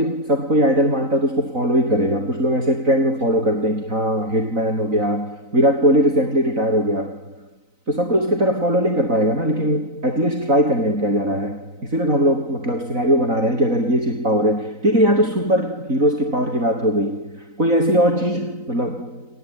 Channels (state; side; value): late; left; 3.9 ms